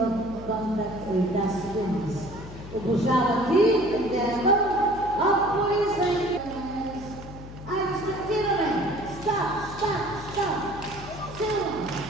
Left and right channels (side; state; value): left; noise; hum, 14 dB below the sound